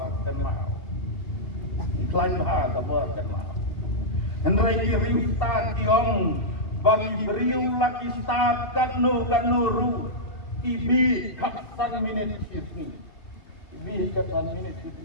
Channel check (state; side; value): late; right; 2.7 ms